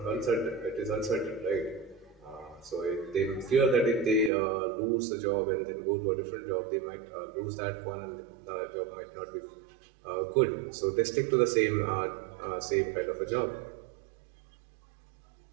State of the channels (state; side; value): drops out; left; at 4.3 s